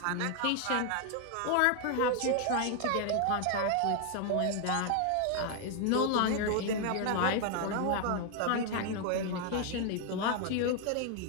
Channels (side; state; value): both; different; correlation 0.00